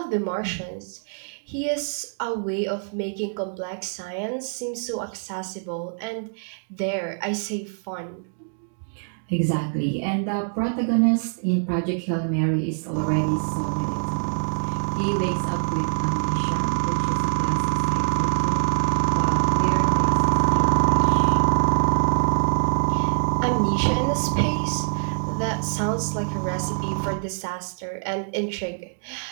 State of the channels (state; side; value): silent; left; digital silence